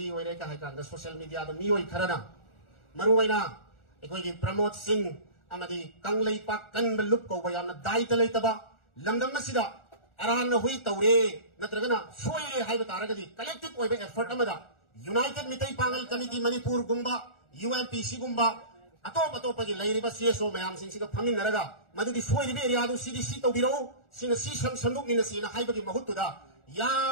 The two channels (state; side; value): late; right; 1.4 ms